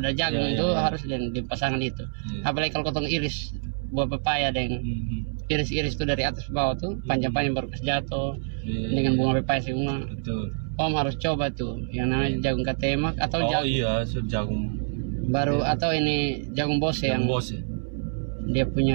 jagung itu harus di pasangan itu apalagi kalau kotong iris buah pepaya dan iris-iris itu dari atas ke bawah tuh panjang-panjang baru jatuh dengan bunga pepaya semua. Betul. Om harus coba tuh yang namanya jagung katemak atau jagung baru atau ini jagung bose yang dia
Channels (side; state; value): left; silent; 60 dB below the other